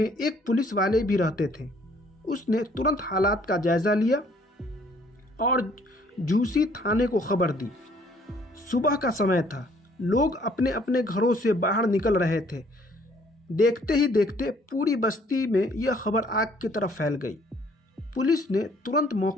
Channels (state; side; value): normal; both; correlation 0.61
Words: एक पुलिस वाले भी रहते थे। उसने तुरंत हालात का जायजा लिया और झूसी थाने को खबर दी। सुबह का समय था, लोग अपने अपने घरों से बाहर निकल रहे थे। देखते ही देखते पूरी बस्ती में यह खबर आग की तरह फैल गई। पुलिस ने तुरंत